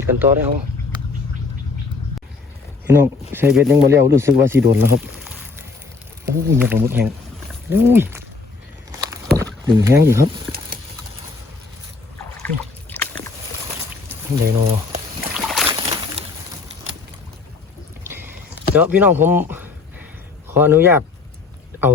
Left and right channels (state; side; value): quieter; right; 4.2 dB